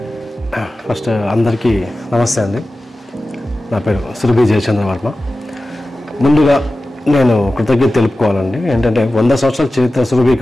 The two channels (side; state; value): both; normal; correlation 0.95